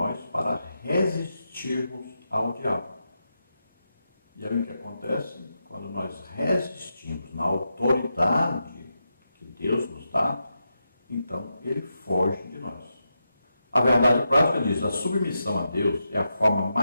para resistirmos ao diabo. E aí o que acontece? Quando nós resistimos na autoridade que Deus nos dá, então ele foge de nós. A verdade prática diz: a submissão a Deus é a forma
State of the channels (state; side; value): inverted; both; correlation -0.87